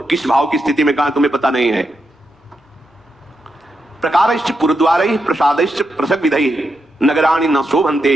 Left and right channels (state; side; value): normal; both; correlation 0.84